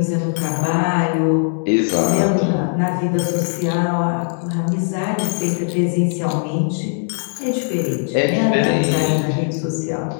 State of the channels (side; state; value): right; silent; digital silence